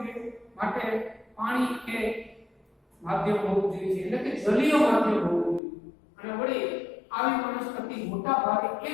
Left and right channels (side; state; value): right; drops out; at 5.6 s